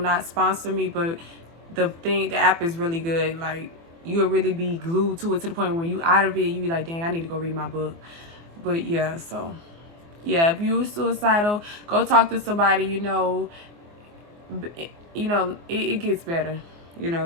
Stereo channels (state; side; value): late; left; 24 ms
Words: sponsor me, but the app is really good. Like, you'll really be glued to it to the point when you out of it, you be like, dang, I need to go read my book. But yeah, so yeah, if you're suicidal, go talk to somebody. It gets better.